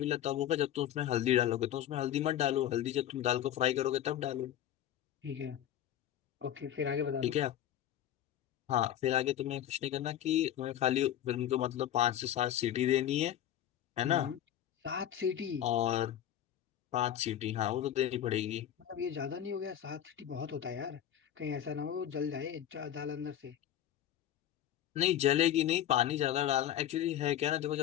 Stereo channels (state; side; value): quieter; right; 11.2 dB